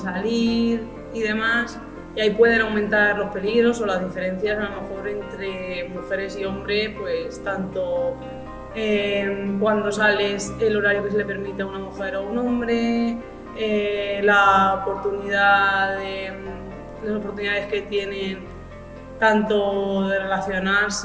salir y demás, y ahí pueden aumentar los peligros o las diferencias a lo mejor entre mujeres y hombres, pues tanto cuando sales, el horario que se le permite a una mujer o a un hombre, las oportunidades que tienen tanto de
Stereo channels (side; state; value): both; identical; correlation 1.00